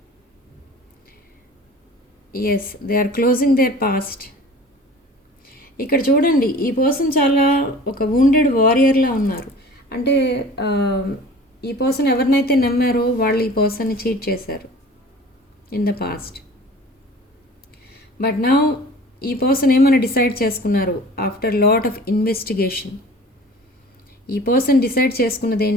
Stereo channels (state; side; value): normal; both; correlation 0.43